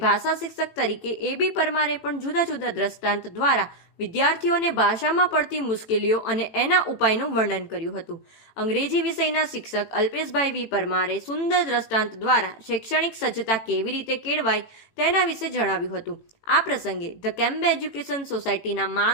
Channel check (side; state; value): right; late; 18 ms